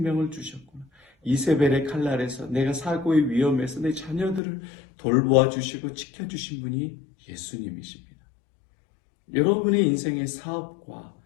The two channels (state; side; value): drops out; right; at 4.4 s